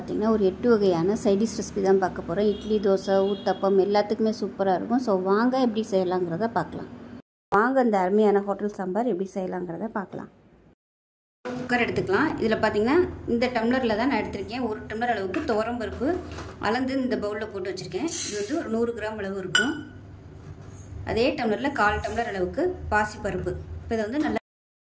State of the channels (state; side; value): identical; both; correlation 1.00